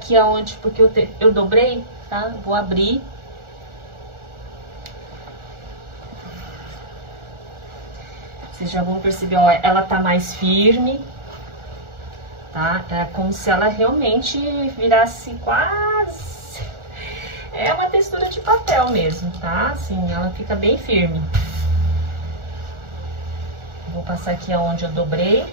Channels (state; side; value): late; left; 1.4 ms